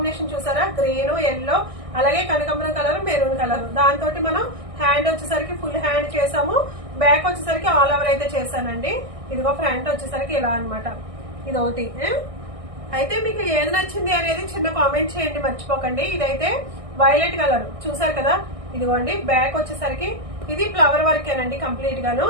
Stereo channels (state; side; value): late; left; 1.6 ms